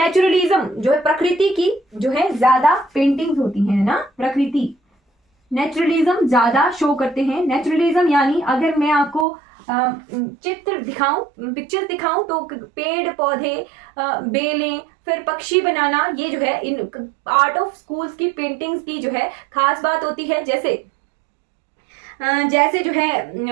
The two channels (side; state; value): left; drops out; at 9.2 s